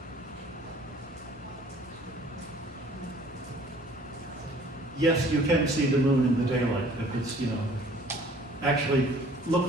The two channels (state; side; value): normal; both; correlation 0.53